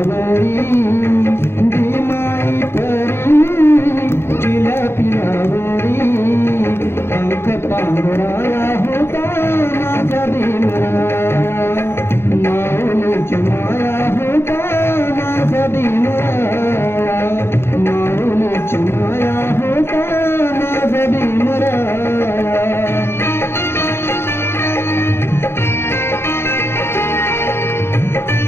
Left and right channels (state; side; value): late; right; 0.12 ms